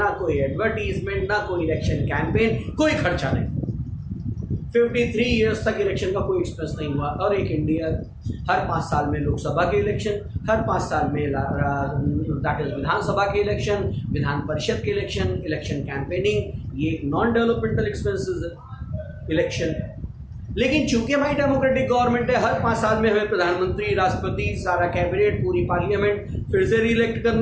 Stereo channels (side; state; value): both; identical; correlation 1.00